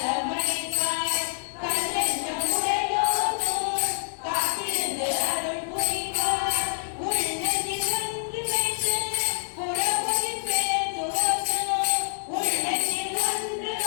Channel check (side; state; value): right; silent; digital silence